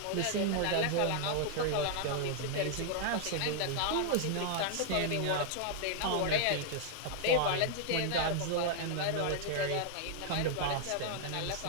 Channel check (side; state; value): both; different; correlation 0.00